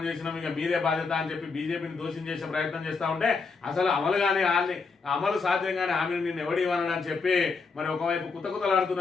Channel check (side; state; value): right; quieter; 4.6 dB